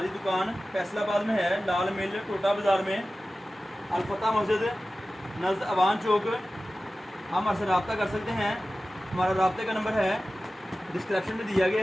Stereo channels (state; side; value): normal; both; correlation 0.96